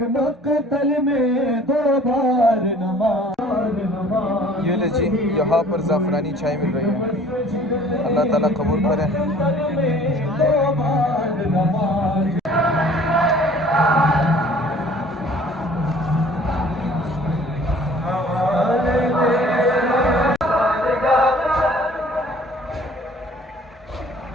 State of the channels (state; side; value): normal; both; correlation 0.52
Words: مقتل میں 2 بار نماز. یہ لے جی یہاں پر زعفرانی چائے مل رہی ہے. اللہ تعالیٰ قبول کرے.